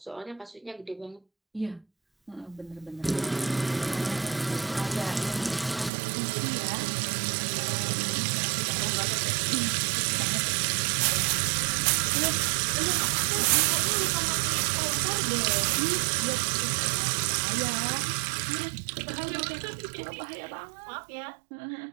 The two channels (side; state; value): left; drops out; at 5.9 s